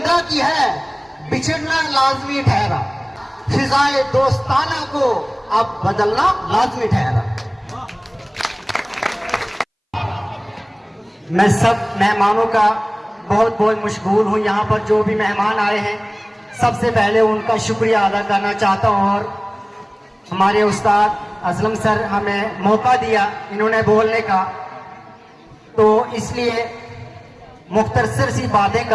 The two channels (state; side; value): identical; both; correlation 1.00